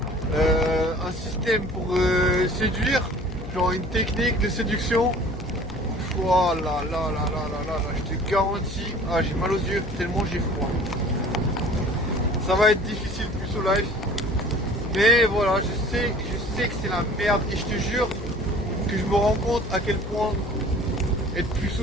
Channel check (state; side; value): noise; left; hum, 11 dB below the sound